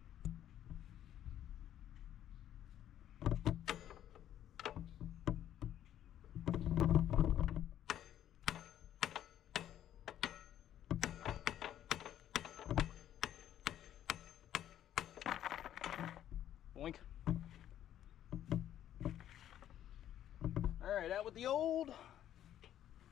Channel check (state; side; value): quieter; right; 11.3 dB